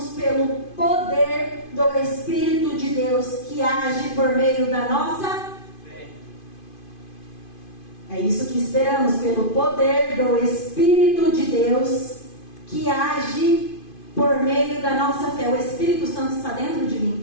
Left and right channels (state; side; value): late; right; 2.5 ms